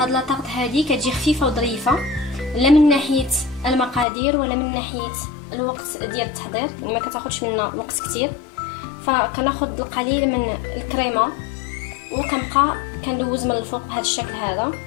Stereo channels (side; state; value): right; drops out; at 4.0 s